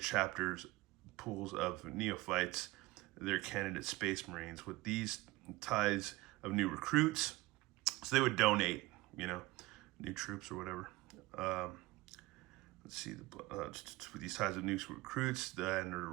chapters, pools of neophytes, their candidate Space Marines, with these tithes of new recruits. So they would donate, new troops or whatever. Let's see, with these tithes of new recruits and the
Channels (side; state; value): left; quieter; 20.3 dB